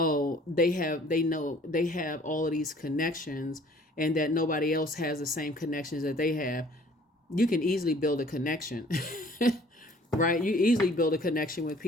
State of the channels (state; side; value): normal; both; correlation 0.54